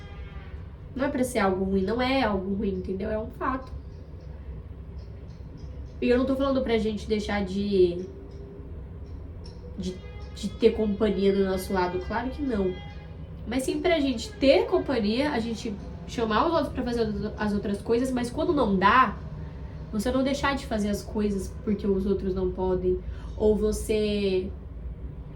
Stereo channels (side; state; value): both; identical; correlation 1.00